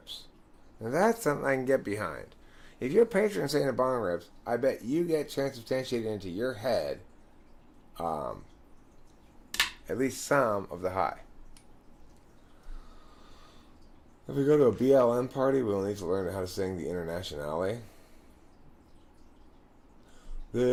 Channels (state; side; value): identical; both; correlation 1.00